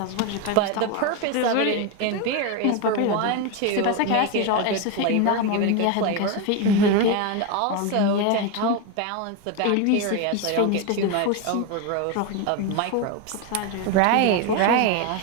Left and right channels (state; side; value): different; both; correlation 0.02